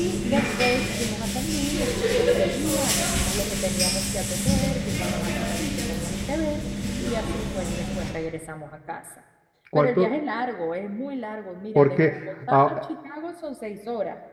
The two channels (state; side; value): identical; both; correlation 1.00